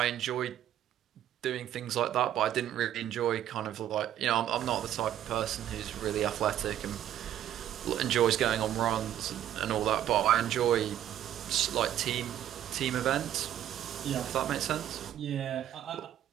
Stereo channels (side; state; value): left; quieter; 11.3 dB